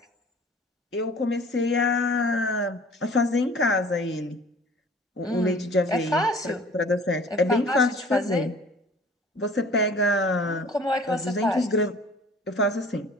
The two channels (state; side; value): normal; both; correlation 0.48